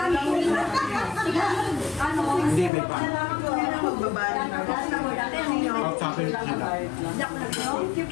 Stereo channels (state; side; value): drops out; right; at 2.7 s